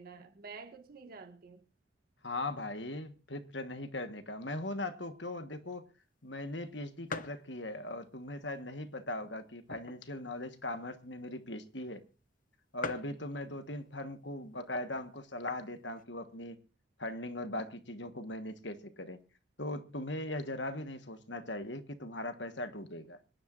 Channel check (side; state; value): both; normal; correlation -0.03